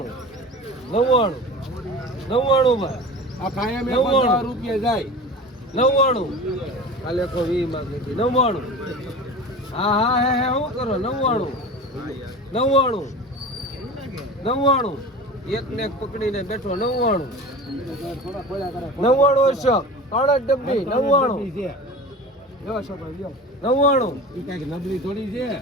99 ભાઈ આ કાયમ 50 રૂપિયા જાય 99 કાલે કો 20 માંગે 99 હા હે હું કરો 99 એક ને એક પકડીને બેઠો 99 છે 3 ડબ્બી 99 લ્યો છોકરો લ્યો 99 ઈ કઈક નબળી થોડી છે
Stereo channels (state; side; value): normal; both; correlation 0.35